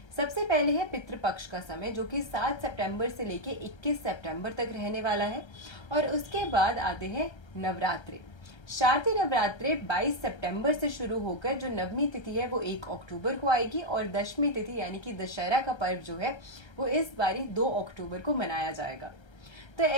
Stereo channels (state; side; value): late; right; 1.3 ms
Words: सबसे पहले है पितृपक्ष का समय, जो कि 7 सितंबर से लेके 21 सितंबर तक रहने वाला है। और उसके बाद आते हैं नवरात्रे। शारदीय नवरात्रे 22 सितंबर से शुरू होकर जो नवमी तिथि है वो 1 अक्टूबर को आएगी और दशमी तिथि यानी कि दशहरा का पर्व जो है वो इस बारी 2 अक्टूबर को मनाया जाएगा। तो